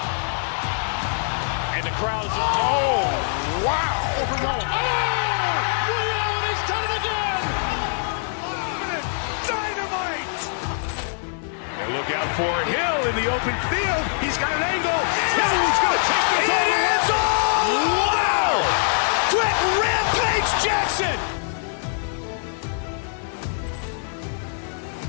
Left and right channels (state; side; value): silent; right; digital silence